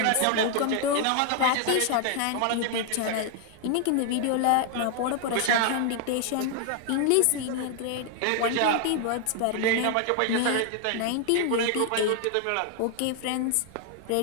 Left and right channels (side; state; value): both; different; correlation 0.00